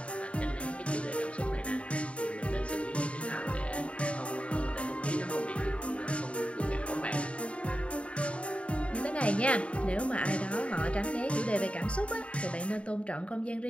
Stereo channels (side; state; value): right; late; 0.062 ms